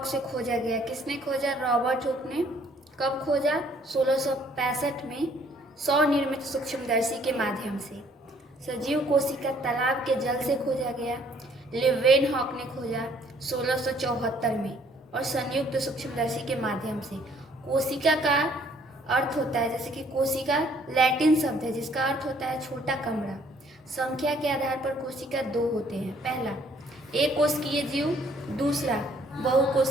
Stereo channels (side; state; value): both; normal; correlation 0.62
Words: से खोजा गया। किसने खोजा? रॉबर्ट हुक ने। कब खोजा? 1665 में स्वनिर्मित सूक्ष्मदर्शी के माध्यम से। सजीव कोशिका तालाब के जल से खोजा गया। लेवेनहॉक ने खोजा 1674 में और संयुक्त सूक्ष्मदर्शी के माध्यम से। कोशिका का अर्थ होता है, जैसे कि कोशिका लैटिन शब्द है जिसका अर्थ होता है छोटा कमरा। संख्या के आधार पर कोशिका दो होते हैं। पहला एक कोशिकीय जीव, दूसरा